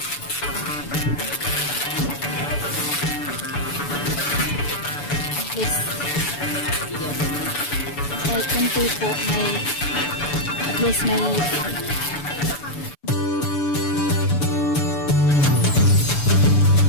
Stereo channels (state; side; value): late; right; 6.9 ms